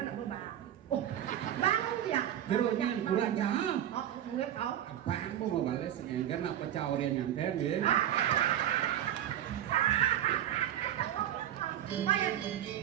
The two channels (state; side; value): quieter; left; 11.3 dB